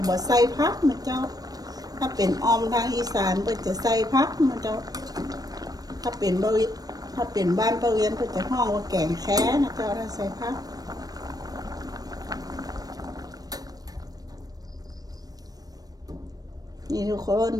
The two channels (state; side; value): late; left; 0.18 ms